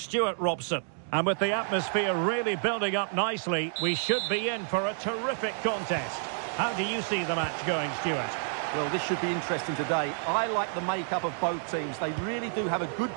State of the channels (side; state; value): left; silent; digital silence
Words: Robson. And with the atmosphere really building up nicely, we should be in for a terrific contest. How do you see the match going, Stuart? Well, this should be interesting today. I like the makeup of both teams. They really do have a good